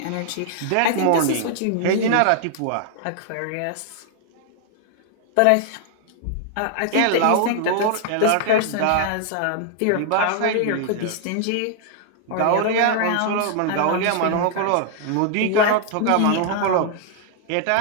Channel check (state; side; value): different; both; correlation 0.00